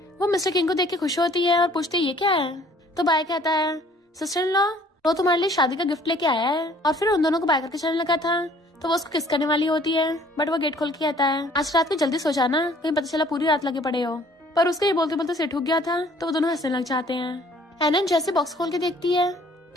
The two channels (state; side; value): normal; both; correlation 0.57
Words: वो मिस्टर किंग को देख के खुश होती है और पूछती है ये क्या है? तो बाय कहता है सिस्टर इन लॉ वो तुम्हारे लिए शादी का गिफ्ट लेके आया है। और फिर उन दोनों को बाय करके चलने लगा था तो वो उसको किस करने वाली होती है, बट वो गेट खोल के कहता है आज रात को जल्दी सो जाना, कहीं पता चला पूरी रात लगे पड़े हो। पर उसको ये बोलते बोलते सिर ठुक गया था तो वो दोनों हंसने लग जाते हैं। एनन जैसे बॉक्स खोल के देखती है